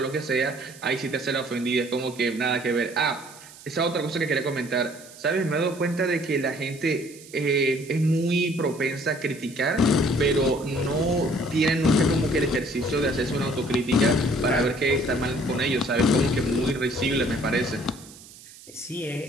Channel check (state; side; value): noise; right; hiss, 20 dB below the sound